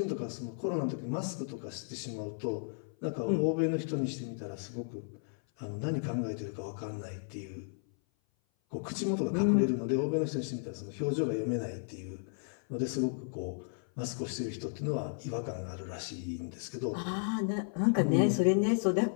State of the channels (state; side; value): silent; right; 55 dB below the other